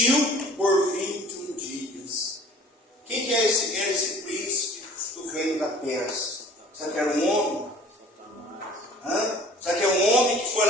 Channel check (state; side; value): normal; both; correlation 0.48